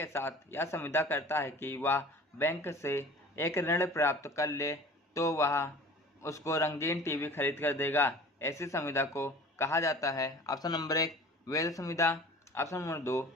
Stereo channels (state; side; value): normal; both; correlation 0.44